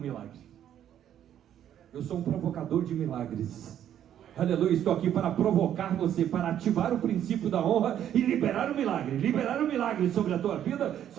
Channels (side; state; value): left; quieter; 10.4 dB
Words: milagre. Eu sou um provocador de milagres. Aleluia, estou aqui para provocar você, para ativar o princípio da honra e liberar o milagre sobre a tua vida,